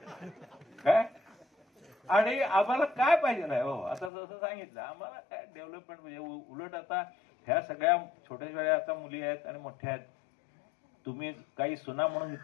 काय. आणि आम्हाला काय पाहिजे नाही हो. आता जसं सांगितलं, आम्हाला काय डेव्हलपमेंट म्हणजे उलट आता ह्या सगळ्या छोट्या छोट्या आता मुली आहेत आणि मोठ्या आहेत. तुम्ही काही सुना म्हणून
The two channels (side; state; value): right; drops out; at 4.1 s